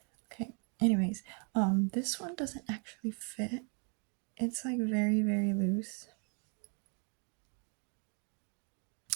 Okay. Anyways, this one doesn't actually fit. It's like very, very loose.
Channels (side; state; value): left; quieter; 37.2 dB